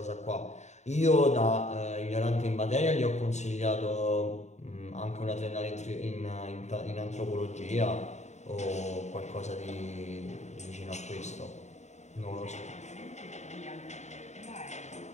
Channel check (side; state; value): right; late; 0.33 ms